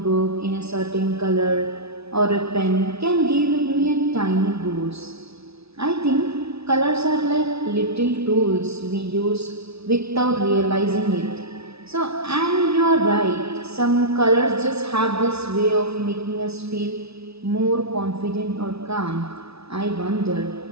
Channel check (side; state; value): left; late; 0.79 ms